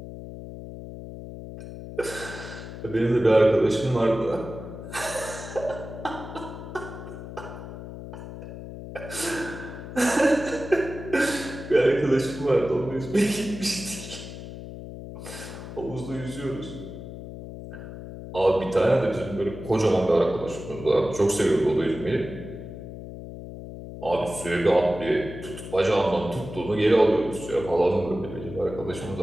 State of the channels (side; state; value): left; noise; hum, 11 dB below the sound